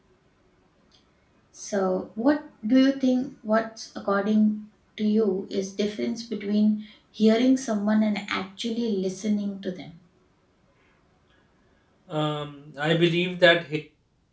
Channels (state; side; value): identical; both; correlation 1.00